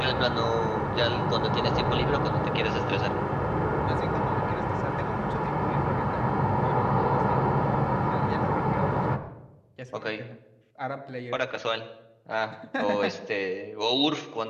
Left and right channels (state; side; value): identical; both; correlation 1.00